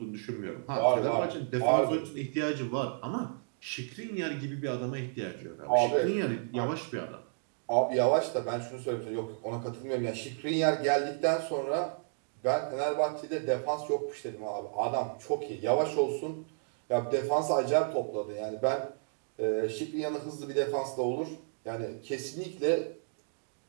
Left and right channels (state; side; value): silent; left; digital silence